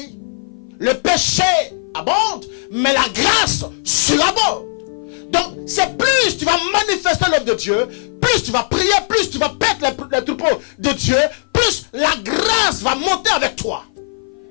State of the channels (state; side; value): silent; right; 57 dB below the other